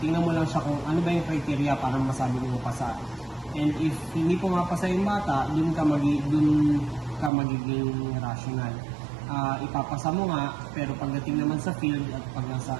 mo lang siya kung ano ba yung criteria para masabi mo pasa. And if hindi po mapasa yung bata, dun ka magiging rational. Ipapasa mo nga, pero pagdating naman sa field at pag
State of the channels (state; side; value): drops out; left; at 7.3 s